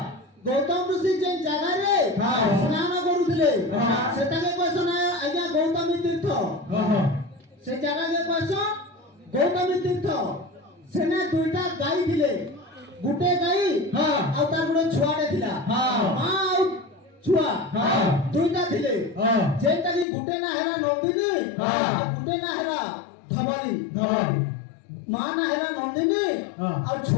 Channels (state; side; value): drops out; right; at 20.1 s